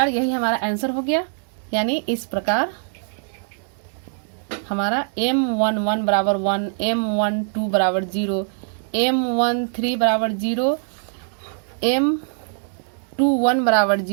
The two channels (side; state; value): left; silent; 64 dB below the other